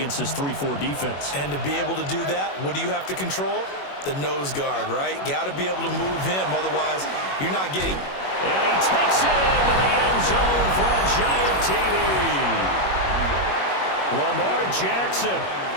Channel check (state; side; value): late; right; 21 ms